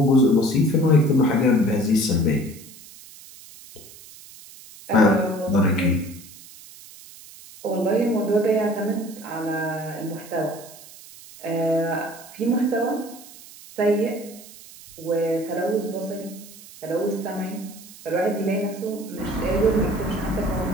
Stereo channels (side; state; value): right; noise; hiss, 19 dB below the sound